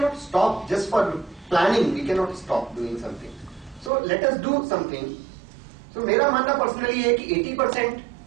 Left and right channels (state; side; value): drops out; left; at 3.9 s